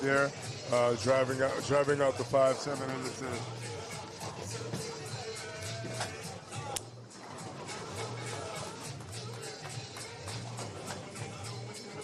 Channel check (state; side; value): identical; both; correlation 1.00